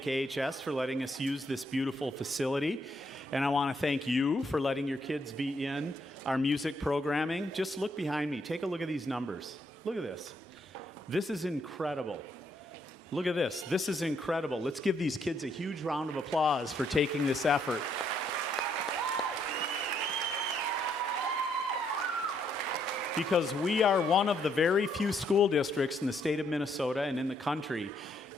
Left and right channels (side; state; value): both; normal; correlation 0.73